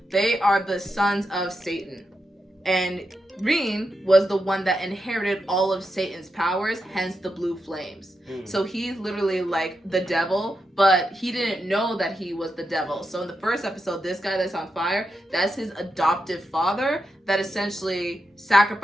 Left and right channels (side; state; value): both; normal; correlation 0.86